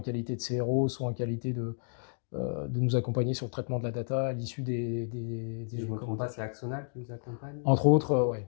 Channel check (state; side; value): silent; right; digital silence